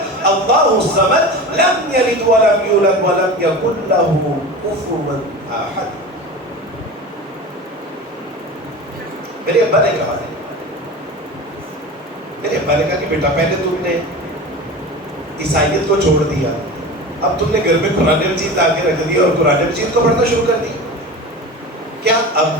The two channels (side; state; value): both; normal; correlation 0.31